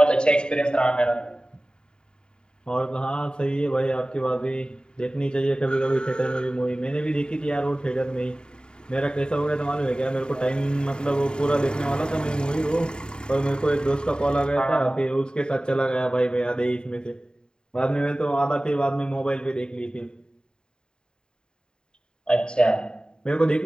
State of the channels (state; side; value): late; right; 0.049 ms